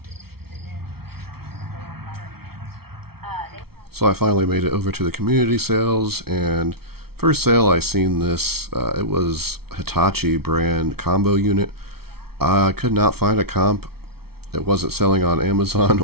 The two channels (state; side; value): late; left; 0.95 ms